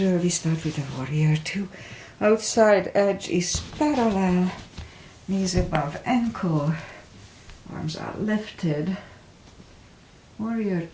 we start with a warrior 2. Outside edge is parallel, knees above ankle, arms are lifted. Warrior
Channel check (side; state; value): both; identical; correlation 1.00